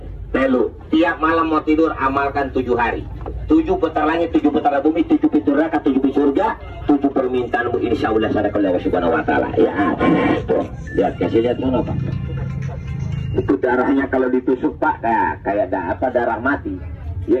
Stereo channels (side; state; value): both; identical; correlation 1.00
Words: telu. Tiap malam mau tidur amalkan 7 hari. 7 putar langit, 7 putar bumi, 7 pintu neraka, 7 pintu surga, 7 permintaanmu insya Allah sadaqallahu subhanahu wa ta'ala. Ya, tuh, lihat, kasih lihat mana Pak? Itu darahnya kalau ditusuk Pak, kayak darah mati.